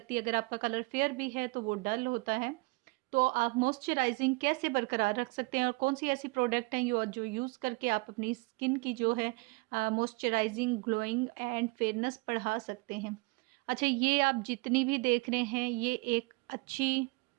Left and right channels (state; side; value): quieter; left; 26.6 dB